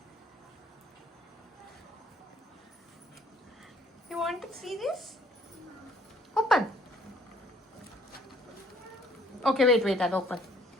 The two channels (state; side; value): normal; both; correlation 0.61